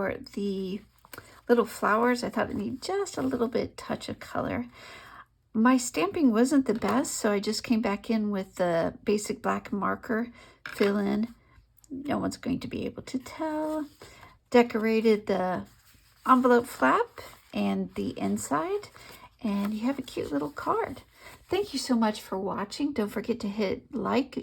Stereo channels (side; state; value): both; identical; correlation 1.00